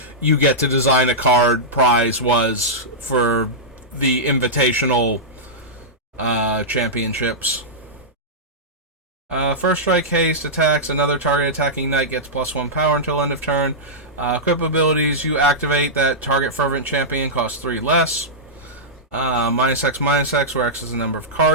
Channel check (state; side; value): normal; both; correlation -0.12